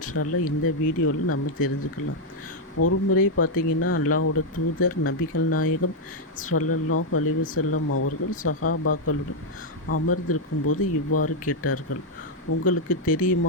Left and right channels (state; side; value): normal; both; correlation -0.01